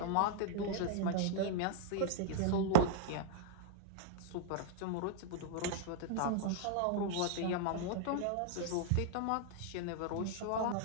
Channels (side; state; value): both; different; correlation -0.01